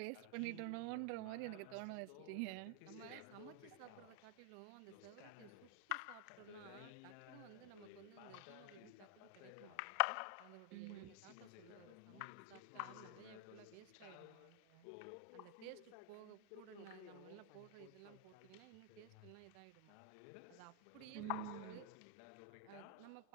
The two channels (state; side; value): different; both; correlation 0.00